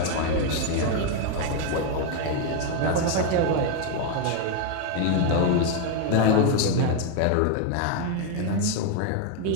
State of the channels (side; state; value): both; different; correlation 0.01